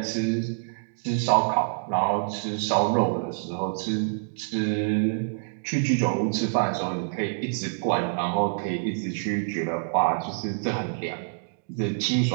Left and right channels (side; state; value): left; silent; digital silence